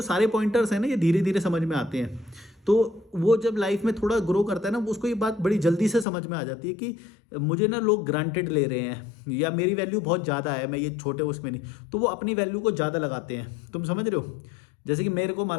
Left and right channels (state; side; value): drops out; right; at 6.1 s